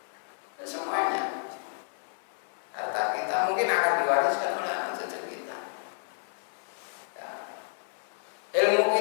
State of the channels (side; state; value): right; silent; 58 dB below the other